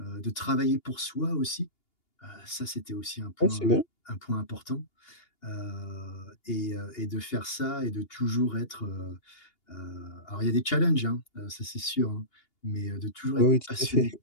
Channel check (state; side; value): late; right; 2.8 ms